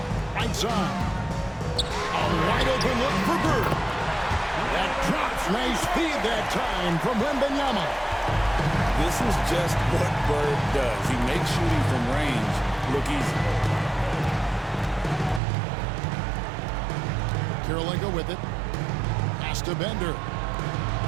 right side. A wide open look for Bird. That drops. Nice feed that time from Wembanyama. This is just what Bird does. He makes shooting from range look easy. Kirilenko with it. Pass to Bender.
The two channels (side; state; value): left; drops out; at 15.4 s